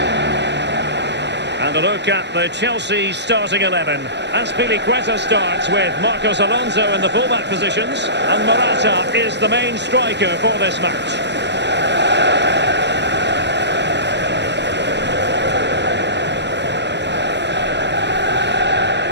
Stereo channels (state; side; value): late; left; 0.51 ms